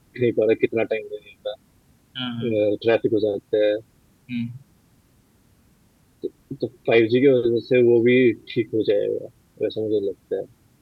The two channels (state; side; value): identical; both; correlation 1.00